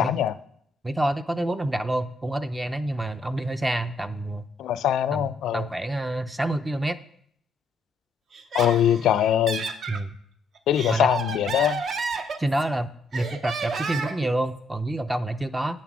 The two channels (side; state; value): right; quieter; 3.2 dB